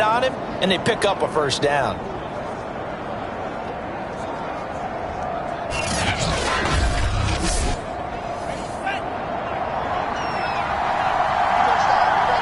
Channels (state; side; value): identical; both; correlation 1.00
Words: on him, and they pick up a first down.